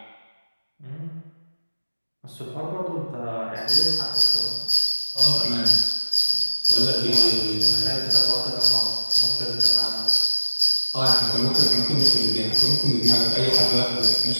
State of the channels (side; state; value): both; inverted; correlation -1.00